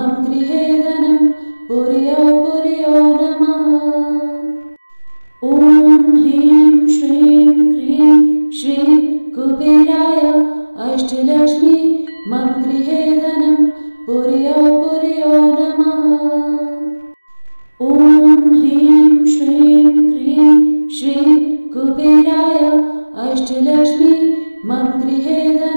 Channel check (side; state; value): both; inverted; correlation -1.00